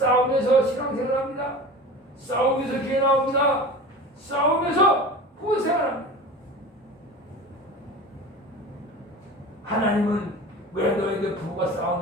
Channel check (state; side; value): normal; both; correlation 0.35